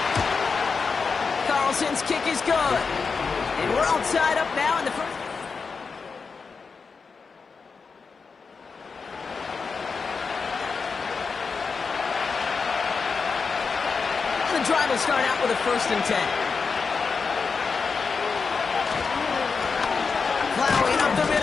Carlson's kick is good. And we're all tied up now in the 1st. The drive will start out with a 1st and 10. Plowing up the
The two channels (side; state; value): right; quieter; 5.1 dB